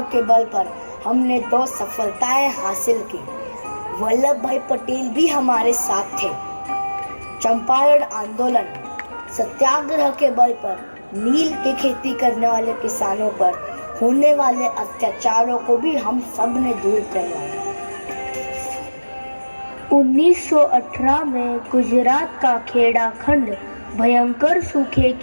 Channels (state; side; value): inverted; both; correlation -1.00